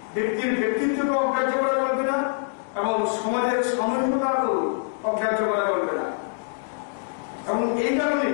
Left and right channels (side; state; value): right; silent; digital silence